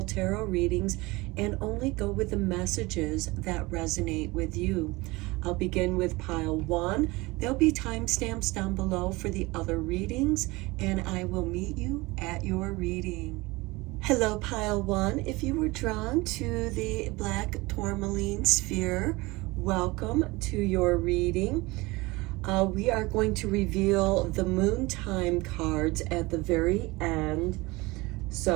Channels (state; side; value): quieter; left; 22.5 dB